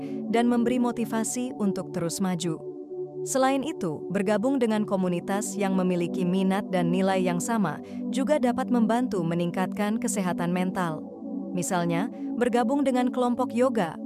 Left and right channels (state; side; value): identical; both; correlation 1.00